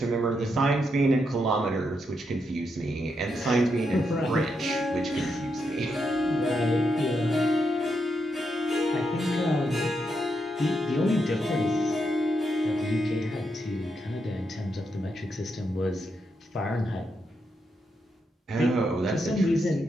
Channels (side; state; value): both; normal; correlation 0.82